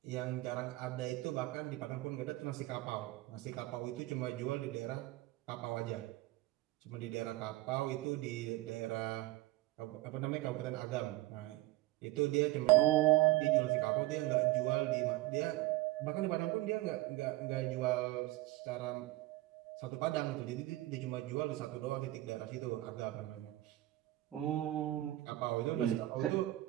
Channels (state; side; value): quieter; left; 17.4 dB